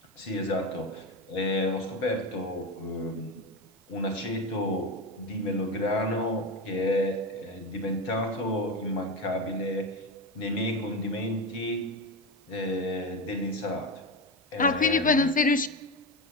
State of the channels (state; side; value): normal; both; correlation 0.17